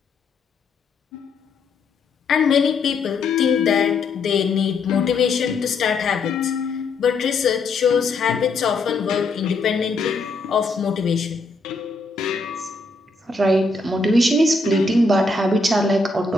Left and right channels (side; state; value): right; quieter; 3.6 dB